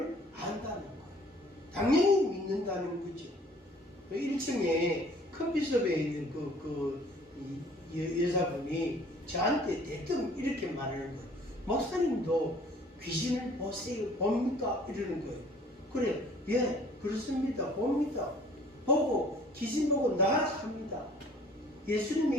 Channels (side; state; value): both; normal; correlation 0.53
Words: 안다는 거예요. 당연히 믿는다는 거죠. 1층에 커피숍에 있는 여자분이 저한테 대뜸 이렇게 말하는 거예요. 목사님도 귀신을 보세요, 봅니까? 이러는 거예요. 그래, 예, 그렇습니다. 봅니다. 보고 귀신 보고 나락합니다.